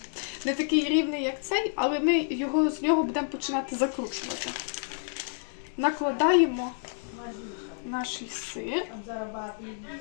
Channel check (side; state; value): right; silent; digital silence